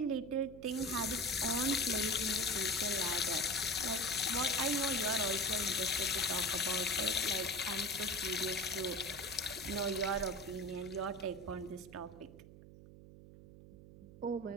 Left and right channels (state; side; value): noise; right; hum, 18 dB below the sound